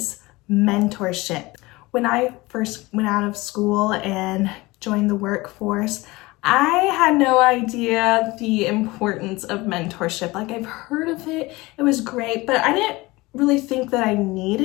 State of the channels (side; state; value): right; quieter; 21.6 dB